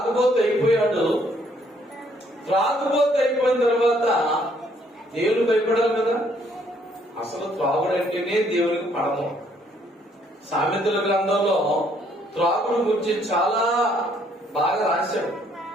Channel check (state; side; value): normal; both; correlation 0.66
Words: అయిపోయాడు. త్రాగుబోతు అయిపోయిన తర్వాత దేవుని భయపడాలి కదా. అసలు త్రాగుడంటేనే దేవునికి పడము. సామెతల గ్రంథంలో త్రాగుడు గురించి చాలా బాగా రాశాడు.